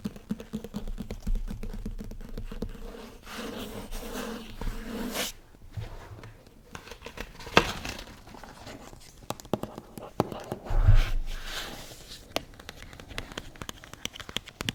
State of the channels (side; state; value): both; identical; correlation 1.00